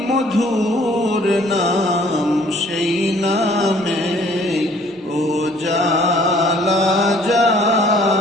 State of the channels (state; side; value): normal; both; correlation 0.58